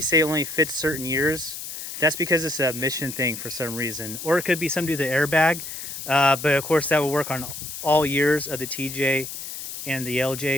say it only fits certain years. That's because it's a mission thing for some reason. Or it could be something to do with the airbag. But of course that will work on all years of the TJ and the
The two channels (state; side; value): noise; left; hiss, 8 dB below the sound